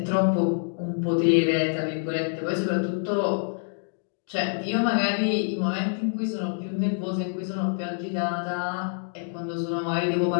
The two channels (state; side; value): silent; right; digital silence